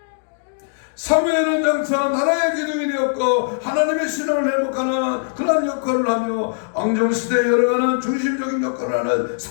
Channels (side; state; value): right; silent; digital silence